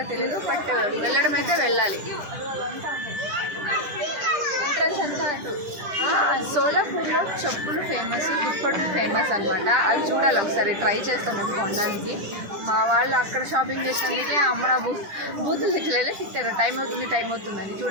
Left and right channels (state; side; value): late; left; 10 ms